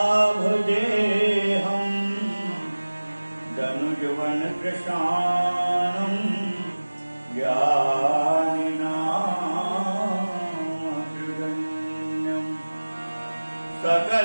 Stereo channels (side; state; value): both; inverted; correlation -1.00